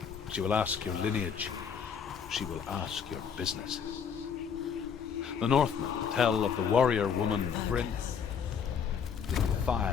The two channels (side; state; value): right; quieter; 7.0 dB